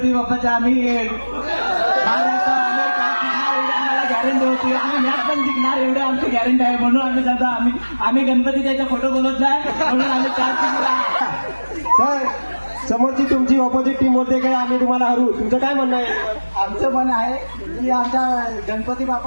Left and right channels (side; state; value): both; inverted; correlation -1.00